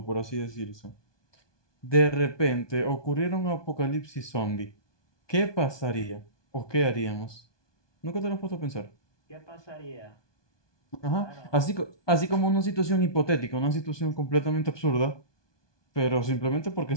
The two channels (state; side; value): late; right; 1.2 ms